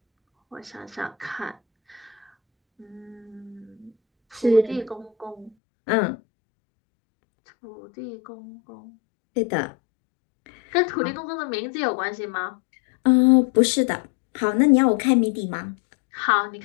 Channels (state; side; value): drops out; right; at 5.5 s